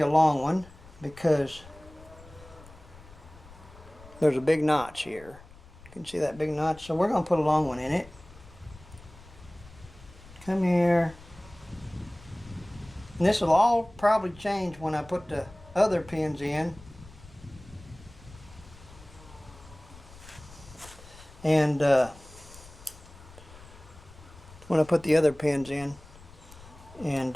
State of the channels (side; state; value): left; noise; rumble, 20 dB below the sound